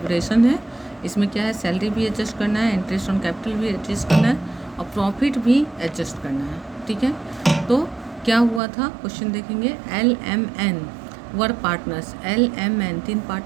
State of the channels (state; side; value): drops out; left; at 8.6 s